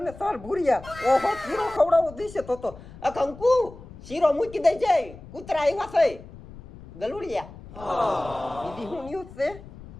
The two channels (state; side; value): noise; left; rumble, 17 dB below the sound